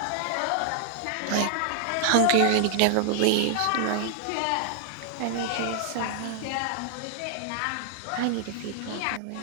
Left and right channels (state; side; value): different; both; correlation 0.00